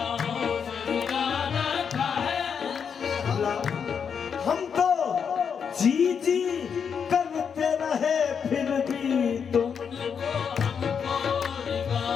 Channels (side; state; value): right; quieter; 6.9 dB